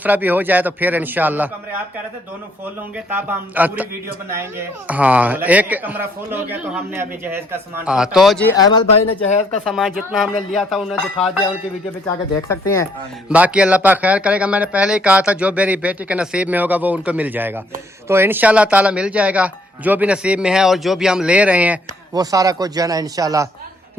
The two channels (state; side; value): normal; both; correlation 0.66